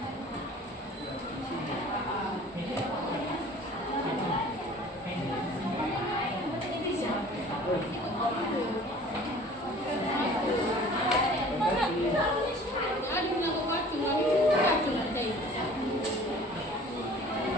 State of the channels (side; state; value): both; normal; correlation 0.48